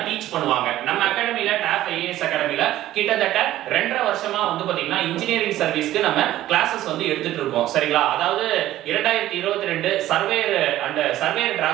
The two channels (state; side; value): quieter; left; 14.2 dB